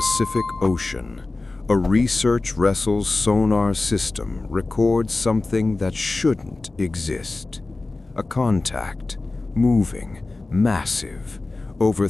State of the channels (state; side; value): quieter; right; 3.3 dB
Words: Ocean, a research vessel's sonar system records something that shouldn't exist. A contact, moving, massive, over